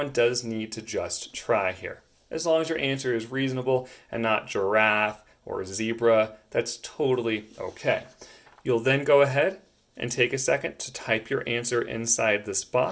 does need to just try here. As long as your answer is reasonable and not giraffe or zebra, that's totally okay. You'll then go ahead and take a second to type your answer inside this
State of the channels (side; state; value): both; identical; correlation 1.00